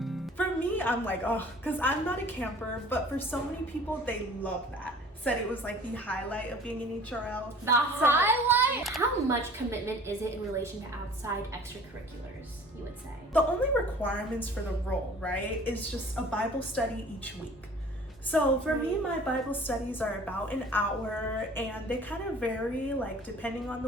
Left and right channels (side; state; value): both; normal; correlation 0.48